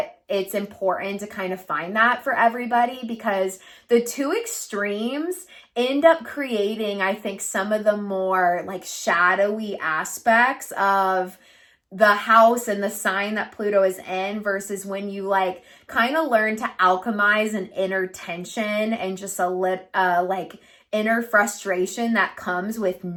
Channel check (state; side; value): identical; both; correlation 1.00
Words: it's important to kind of find that for everybody, because the two extremes end up creating, I think, some of the more like shadowy aspects of the house and the sign that Pluto is in, versus when you like kind of learn to alchemize an inner tension and just like inner frustration that comes with